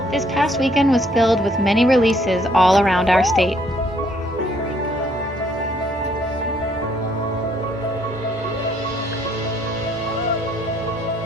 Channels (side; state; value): both; normal; correlation 0.67